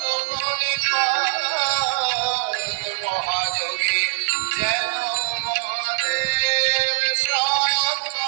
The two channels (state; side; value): silent; left; 57 dB below the other